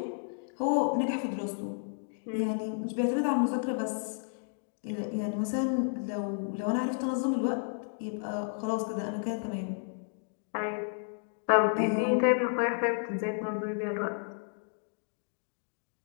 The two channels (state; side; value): silent; right; digital silence